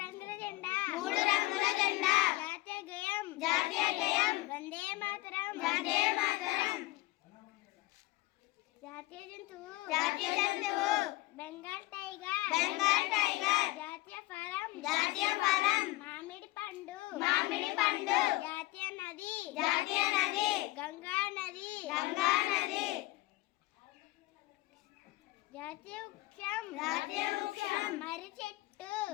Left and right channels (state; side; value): quieter; right; 19.5 dB